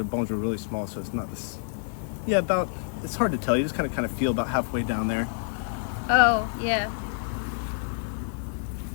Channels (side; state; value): right; silent; 60 dB below the other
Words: bones are really small, so it's not this. Yeah, about, it's hard to tell. You just kind of feel about halfway down there. Oh, yeah.